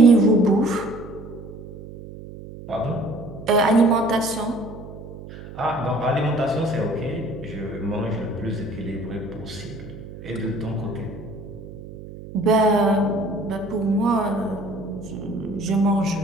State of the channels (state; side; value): noise; right; hum, 14 dB below the sound